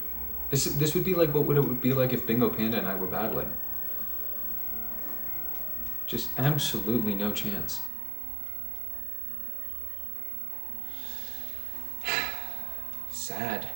This would be like what it would be like if Bingo Panda and I were battling. Just absolutely no chance. Sad.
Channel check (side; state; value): left; drops out; at 7.9 s